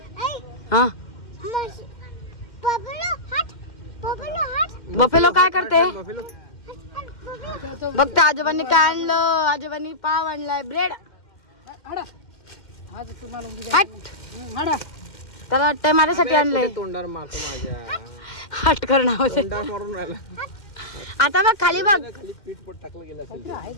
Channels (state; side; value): late; right; 2.1 ms